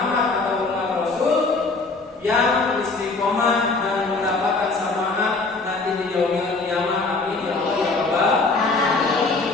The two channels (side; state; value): right; quieter; 3.7 dB